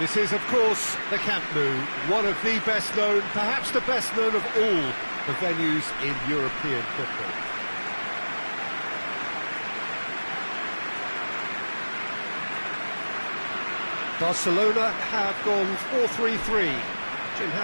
is, of course, the Camp Nou, one of the best known, perhaps the best known of all the venues in European football. Barcelona have gone 4-3-3. Jim,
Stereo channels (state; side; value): inverted; both; correlation -1.00